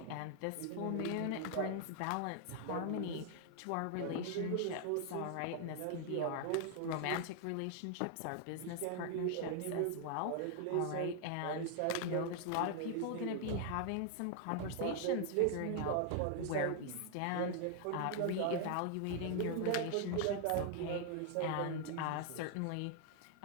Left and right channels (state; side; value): different; both; correlation 0.00